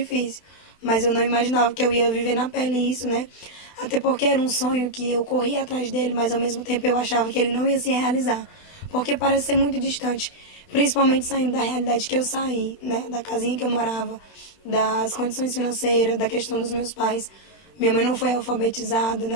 mas eu não imaginava que eu ia viver na pele isso, né? Até porque era um sonho que eu corria atrás dele, mas ao mesmo tempo eu achava que ele não ia se realizar, porque parece ser muito distante, principalmente saindo da realidade que eu saí, né? Da casinha que eu morava, das condições financeiras, da questão dos meus pais. Minha mãe não foi alfabetizada,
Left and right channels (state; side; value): late; right; 20 ms